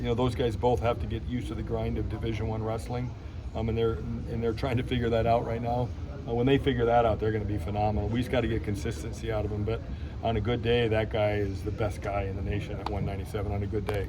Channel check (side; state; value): both; identical; correlation 1.00